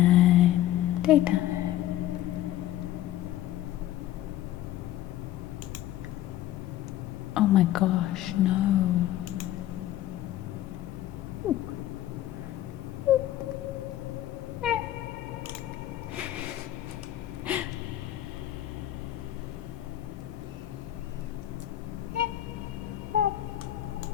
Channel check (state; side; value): quieter; right; 13.4 dB